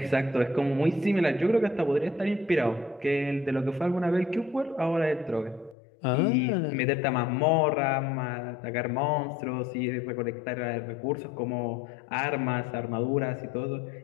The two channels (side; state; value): right; drops out; at 5.8 s